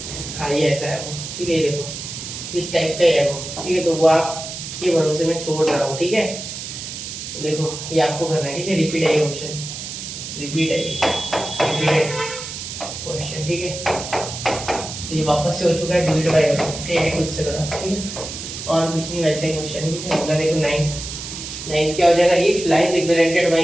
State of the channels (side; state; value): right; noise; hiss, 8 dB below the sound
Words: हाँ ये ऐसा है वो, ठीक है। ये देखो इस टाइप का ही है वो, ठीक है। तो वो आपके भरोसे में छोड़ रहा हूँ, ठीक है। देखो ये आपको करना है, ठीक है। रिपीट है ये क्वेश्चन, रिपीटेड क्वेश्चन, ठीक है। तो ये वापस से हो चुका है, डिलीट बाय, ठीक है, खुद से करो, ठीक है, और कुछ नहीं, वैसे ही क्वेश्चन, ठीक है। अगला देखो 9th क्या हो जाएगा, if lines represented by